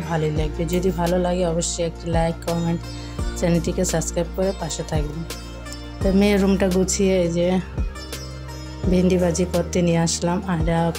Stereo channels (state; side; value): identical; both; correlation 1.00